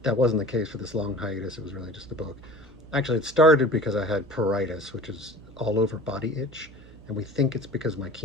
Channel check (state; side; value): noise; right; hum, 20 dB below the sound